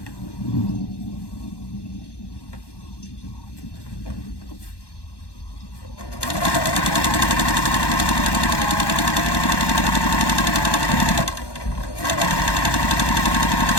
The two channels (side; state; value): right; late; 1.1 ms